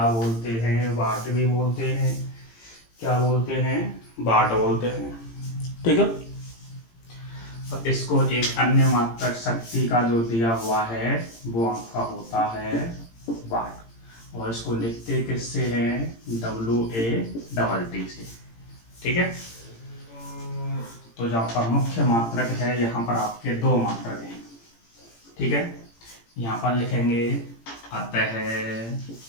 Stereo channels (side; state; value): right; late; 18 ms